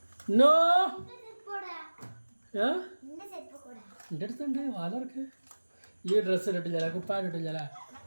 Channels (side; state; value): both; inverted; correlation -1.00